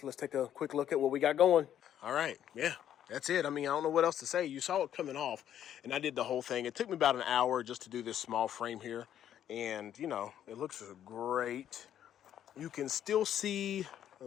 let's take a quick look at what we got going. All right, yeah, that's it. I mean, I don't know what else to say. You saw it coming off, and I did the whole thing. It took me about an hour just to do this small frame here, and, you know, it looks great. You can still see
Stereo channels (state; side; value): quieter; right; 10.4 dB